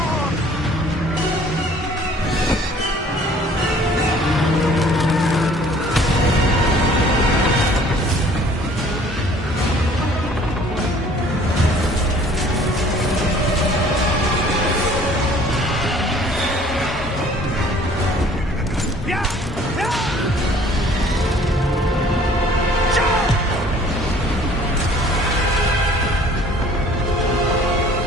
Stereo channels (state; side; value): normal; both; correlation 0.54